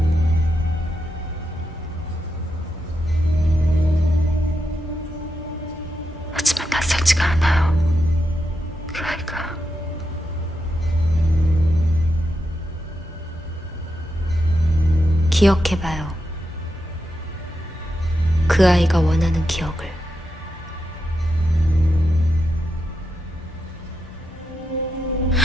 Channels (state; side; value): normal; both; correlation 0.86